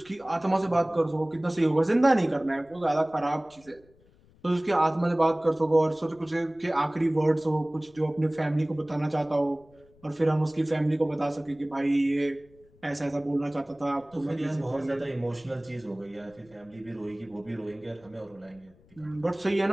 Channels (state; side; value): noise; left; rumble, 29 dB below the sound